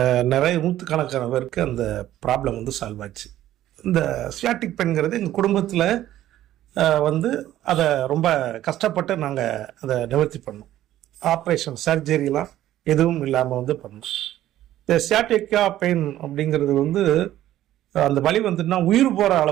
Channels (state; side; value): quieter; left; 13.3 dB